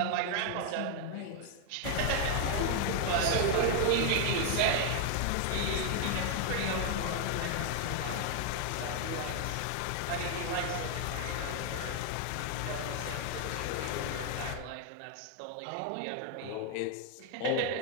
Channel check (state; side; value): different; both; correlation 0.00